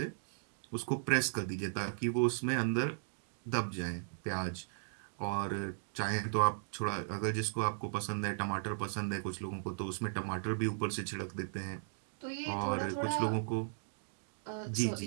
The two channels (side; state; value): left; silent; digital silence